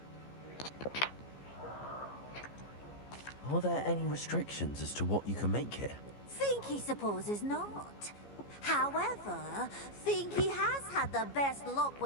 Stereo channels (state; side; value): late; right; 15 ms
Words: Are there any restrictions as to what you can make here? Finky supposes not. However, Finky has had the best luck